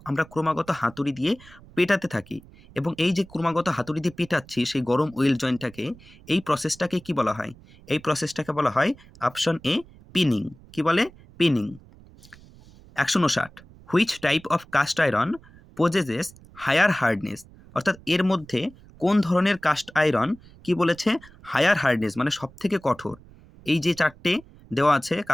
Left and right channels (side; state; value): right; noise; rumble, 23 dB below the sound